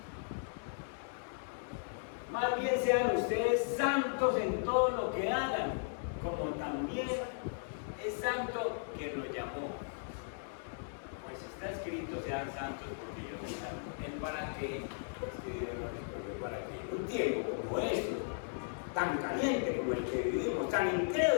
Más bien sean ustedes santos en todo lo que hagan, como también es santo quien nos llamó. Pues está escrito: sean santos porque yo soy santo. ¿El para qué? Para que un tiempo como este, tan caliente como el que vivimos, tan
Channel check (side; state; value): right; silent; digital silence